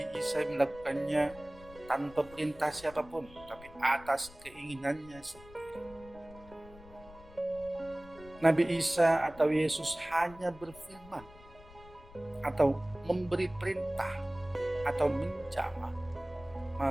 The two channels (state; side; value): noise; left; rumble, 20 dB below the sound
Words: Isa melakukannya tanpa perintah siapapun, tapi atas keinginannya sendiri. Nabi Isa atau Yesus hanya berfirman atau memberi perintah atau menjamah,